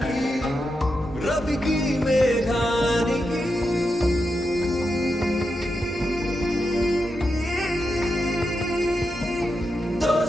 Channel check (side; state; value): both; normal; correlation 0.87